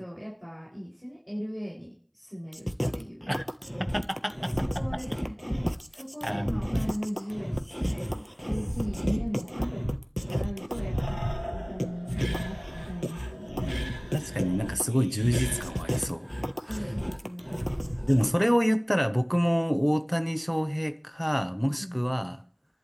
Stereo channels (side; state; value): both; identical; correlation 1.00